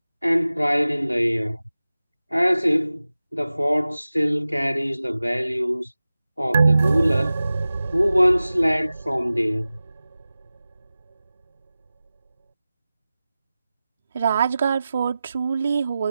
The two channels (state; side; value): inverted; both; correlation -0.96